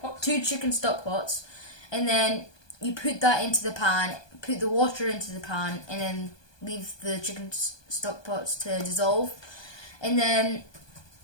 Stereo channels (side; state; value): right; late; 1.2 ms